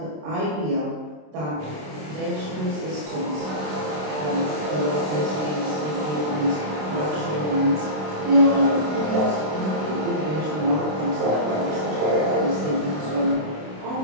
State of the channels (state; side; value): late; left; 27 ms